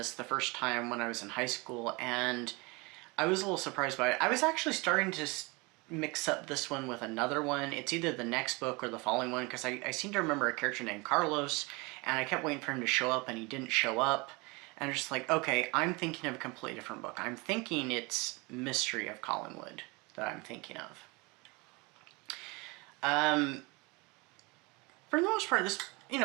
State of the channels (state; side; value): quieter; left; 26.5 dB